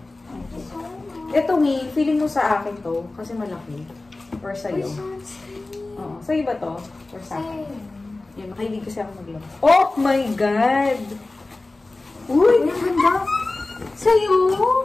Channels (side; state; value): right; quieter; 3.2 dB